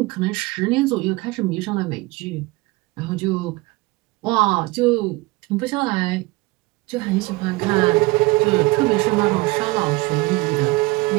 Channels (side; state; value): left; quieter; 22.3 dB